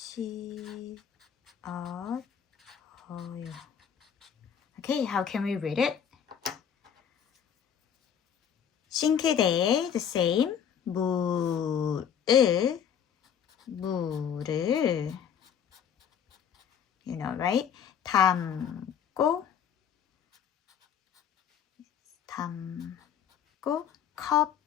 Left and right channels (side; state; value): right; quieter; 8.3 dB